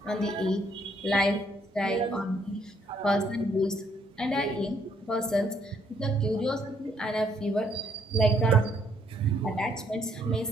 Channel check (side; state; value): both; normal; correlation 0.69